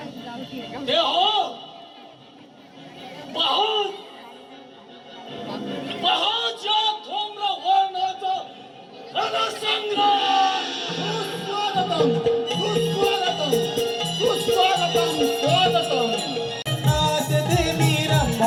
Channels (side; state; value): both; identical; correlation 1.00